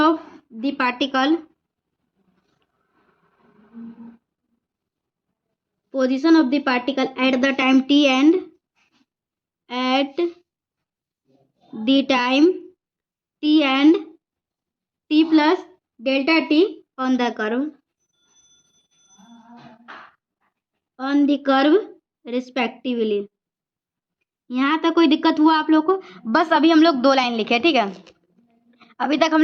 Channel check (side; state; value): both; identical; correlation 1.00